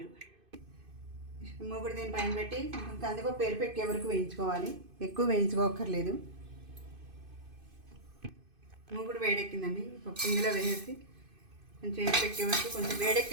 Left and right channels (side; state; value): left; late; 2.5 ms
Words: మూగుడు దీని పైన పెట్టి కందిపప్పు ఎరిపెక్కే వరకు వేయించుకోవాలి. ఎక్కువ వేయించుకోకర్లేదు. మూగుడు వేడెక్కిందండి. పప్పు ఇందులో వేసేసి కొంచెం ఎరిపెక్కే వరకు, కొంచెం